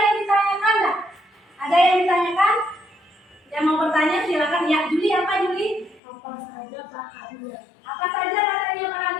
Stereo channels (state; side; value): drops out; right; at 6.0 s